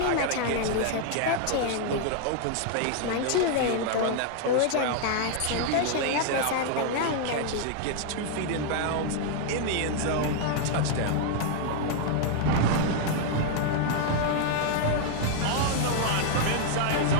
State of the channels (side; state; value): both; different; correlation 0.00